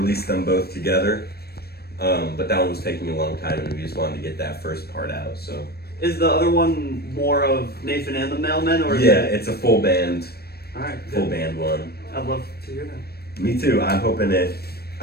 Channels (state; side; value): late; right; 0.46 ms